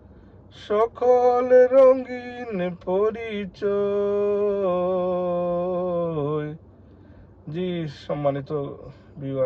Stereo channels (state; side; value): identical; both; correlation 1.00